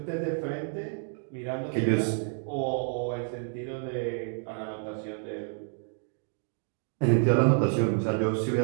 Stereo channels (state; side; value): silent; left; 58 dB below the other